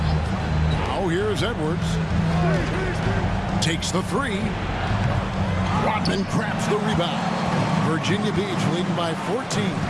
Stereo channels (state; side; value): identical; both; correlation 1.00